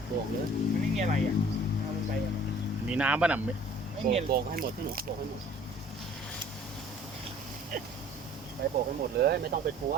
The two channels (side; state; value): both; normal; correlation 0.52